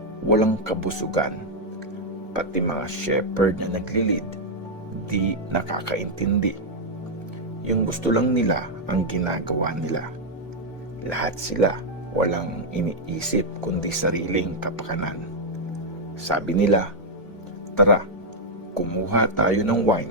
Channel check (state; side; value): normal; both; correlation -0.02